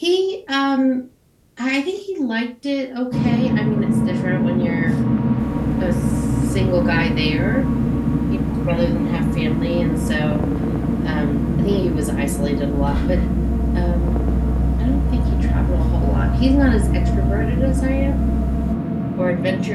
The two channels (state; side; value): identical; both; correlation 1.00